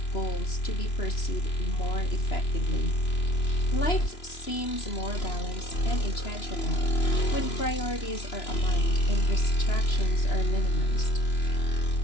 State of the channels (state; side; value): late; right; 3.0 ms